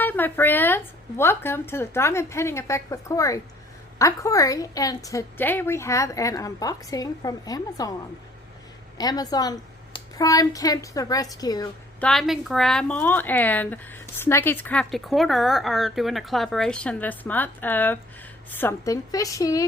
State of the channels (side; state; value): both; normal; correlation 0.56